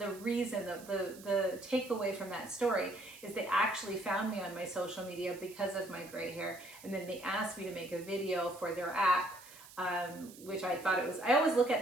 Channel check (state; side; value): noise; right; hiss, 19 dB below the sound